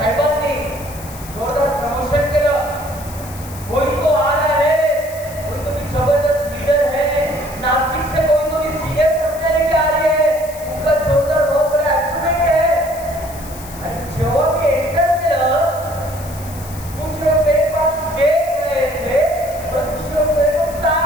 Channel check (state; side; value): noise; left; hiss, 16 dB below the sound